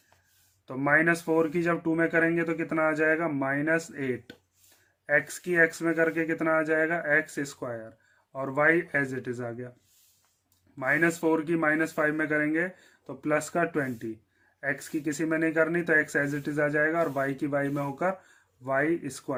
तो -4 की जब 2 में करेंगे तो कितना आ जाएगा -8, x की x में करके कितना आ जाएगा एक्स स्क्वायर, और y एज इट इज आ गया। -4 की -5 में करेंगे तो प्लस का 20, x की किसी में नहीं करनी तो x एज इट इज आ जाएगा, और y की y में होकर वाई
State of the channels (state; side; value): identical; both; correlation 1.00